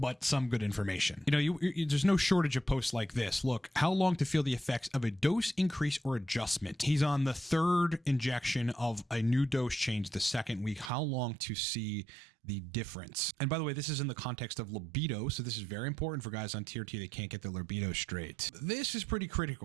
some good information. There's no shortage of posts like this. Look, how long to feel the effects of a dose increase or adjustment? He's on the 3rd injection of a new dose change the 2nd week. How long to see the difference? And by the way, this is in the context of libido, so this is very important for guys on TRT that can't get their libido straight. This is pretty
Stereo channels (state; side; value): drops out; left; at 10.9 s